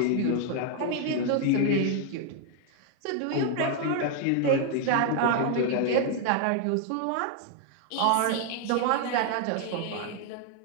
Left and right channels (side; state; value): both; different; correlation 0.00